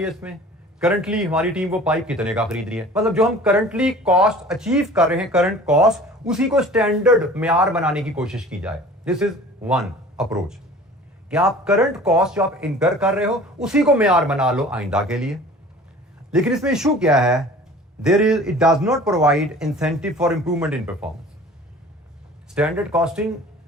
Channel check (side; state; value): both; normal; correlation 0.45